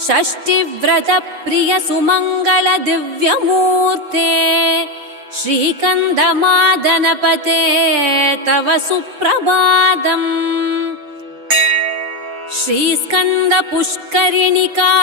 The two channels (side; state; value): left; late; 7.2 ms